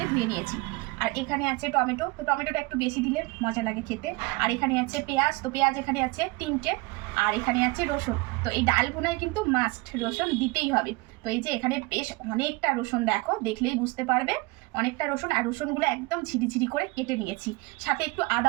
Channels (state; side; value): quieter; left; 24.9 dB